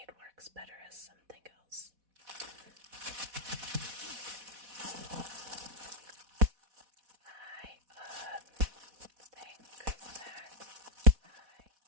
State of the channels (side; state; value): left; late; 4.1 ms